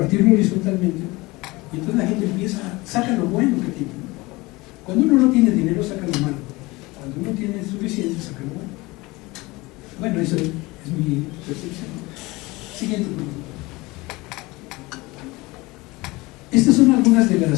horizontalmente, y entonces la gente empieza, saca lo bueno que tiene, ¿no? Cuando uno no tiene dinero, saca lo malo. Cuando uno tiene suficiente, saca lo bueno. Bueno, eso es mi percepción. Siguiente pregunta. Estas son algunas de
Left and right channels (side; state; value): right; quieter; 22.3 dB